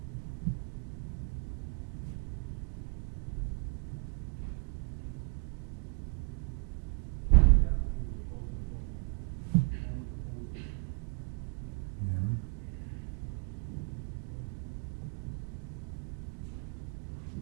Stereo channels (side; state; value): left; quieter; 35.9 dB